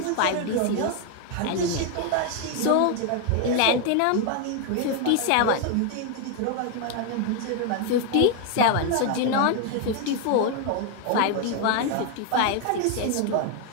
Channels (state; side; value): different; both; correlation 0.01